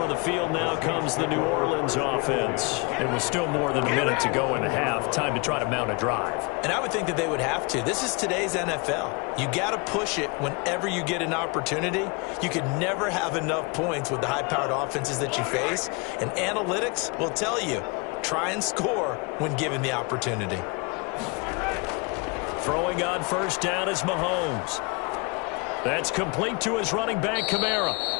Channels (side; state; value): right; quieter; 30.1 dB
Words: the field now comes the New Orleans offense. It was still more than a minute to go in the half. Time to try to mount a drive. And I would think that they would have to. This is today's NFL. You got to push it whenever you get an opportunity. You could never have enough points with the high-powered offenses that you face. And analytics will tell you, try and score when given the opportunity. Throwing on first down is Mahomes. That's complete to his running back, Kamara.